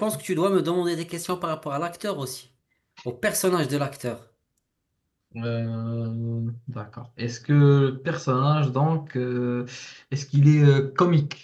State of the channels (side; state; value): both; identical; correlation 1.00